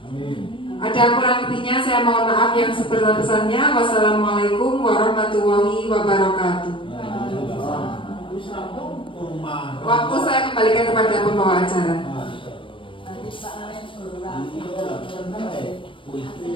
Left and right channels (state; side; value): late; right; 0.25 ms